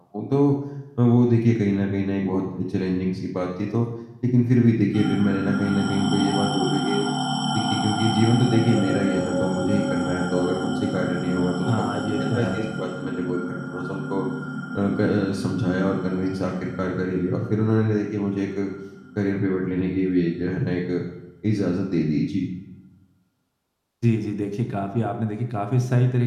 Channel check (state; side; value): identical; both; correlation 1.00